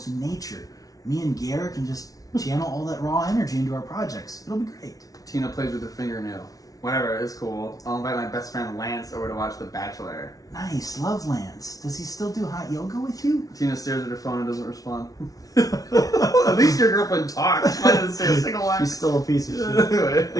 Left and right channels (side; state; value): right; late; 0.18 ms